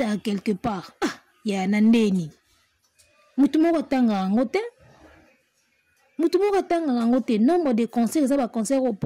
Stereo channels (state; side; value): identical; both; correlation 1.00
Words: à quelque part. Ah, ya nandeni. Mutumoko tanga ngote. Mutumoko tanga ngote. Nombre de concerts, ça va concert au